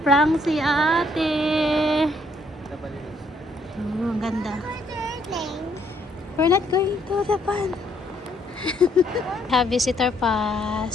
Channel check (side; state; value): both; normal; correlation 0.68